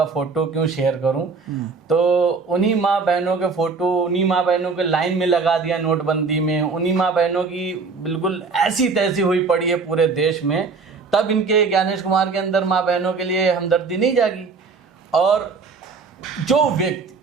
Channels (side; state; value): left; quieter; 4.6 dB